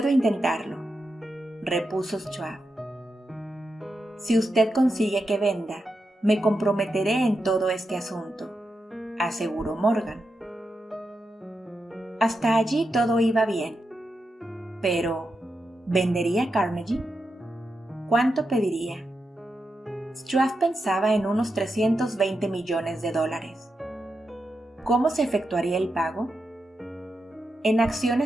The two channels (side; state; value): both; normal; correlation 0.87